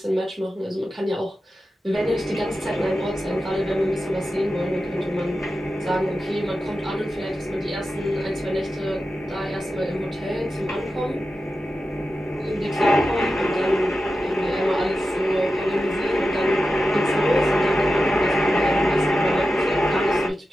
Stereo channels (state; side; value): normal; both; correlation 0.92